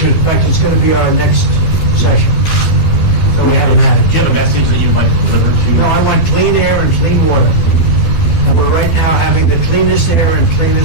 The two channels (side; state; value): right; late; 12 ms